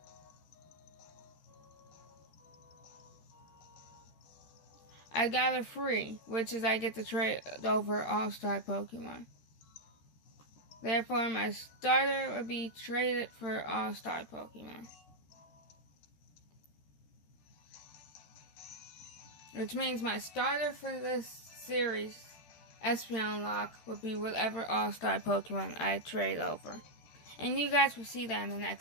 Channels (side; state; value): right; late; 13 ms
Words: I got a free, which is I get to trade over All-Star Pokemon. Therefore, my starter would be traded for All-Star Pokemon. Which means my starter for this series, Espeonlocke, would be whatever All-Star Pokemon I trade over. And you guys will see that in the